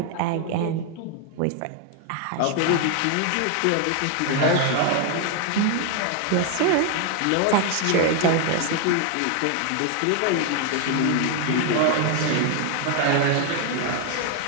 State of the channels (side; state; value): both; different; correlation 0.01